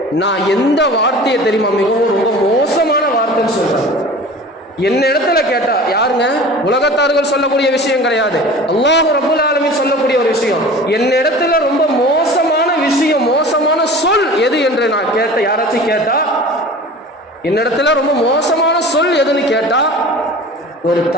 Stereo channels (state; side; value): normal; both; correlation 0.39